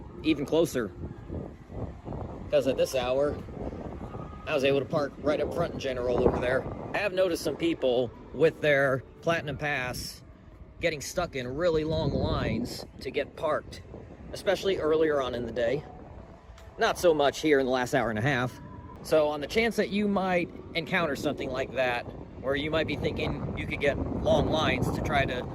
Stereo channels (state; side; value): identical; both; correlation 1.00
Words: even closer, because at this hour I was able to park right up front in general over there. I have noticed some people with their Platinum Pass getting stuck in really long lines to get parked, especially earlier on in the day. Not so much here in the last hour and a half. So on the chance that you might encounter something like that, where you might be thinking you could get long lines to try to